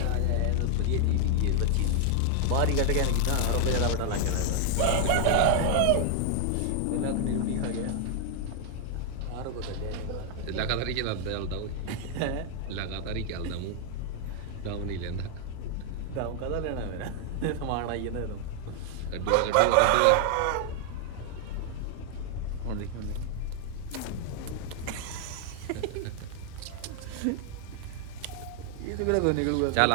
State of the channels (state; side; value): different; both; correlation 0.00